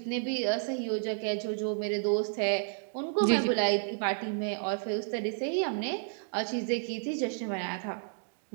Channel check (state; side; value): silent; left; digital silence